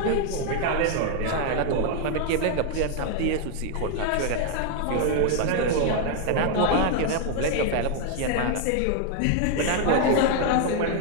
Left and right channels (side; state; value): both; different; correlation 0.00